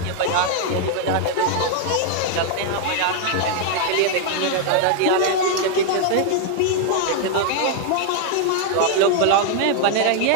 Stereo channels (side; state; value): both; different; correlation 0.00